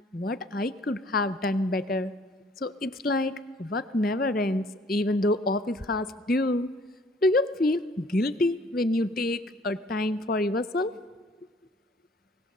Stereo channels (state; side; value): normal; both; correlation 0.57